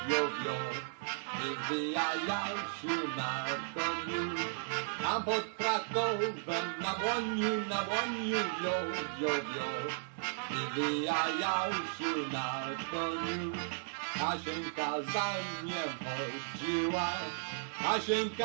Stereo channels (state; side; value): silent; left; digital silence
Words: wio, wio. Wywijał się na koniu. Tam pod Krakowem na dłoniu, wio, wio, wio. Wywijał się na koniu. Kasieńka za nim chodziła,